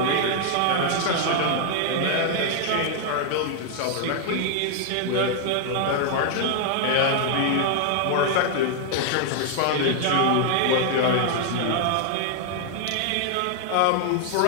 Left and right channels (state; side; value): different; both; correlation 0.00